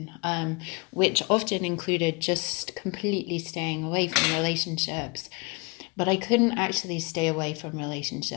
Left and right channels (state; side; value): quieter; right; 28.8 dB